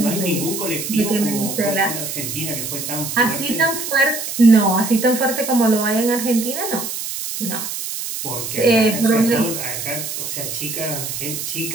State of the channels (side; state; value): right; noise; hiss, 5 dB below the sound